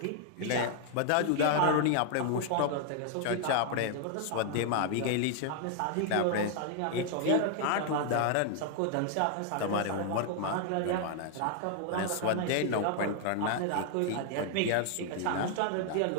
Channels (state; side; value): different; both; correlation 0.00